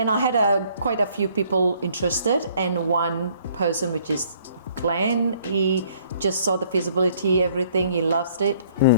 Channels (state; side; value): inverted; both; correlation -0.62